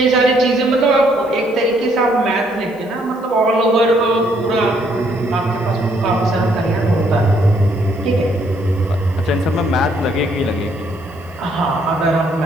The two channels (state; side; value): noise; left; hiss, 29 dB below the sound